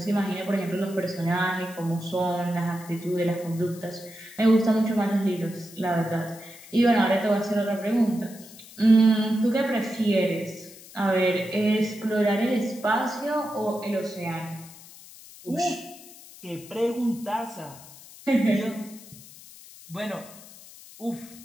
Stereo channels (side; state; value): left; noise; hiss, 19 dB below the sound